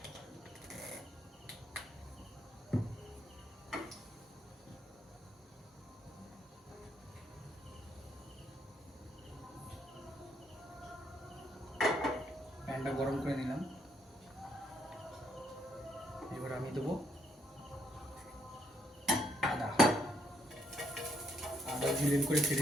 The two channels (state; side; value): normal; both; correlation 0.73